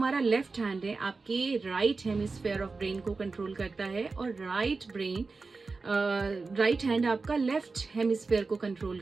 लेफ्ट हैंड है आपके राइट हेमिस्फेयर ऑफ ब्रेन को कंट्रोल करता है और राइट हैंड आपका लेफ्ट हेमिस्फेयर को कंट्रोल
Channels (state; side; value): quieter; left; 4.1 dB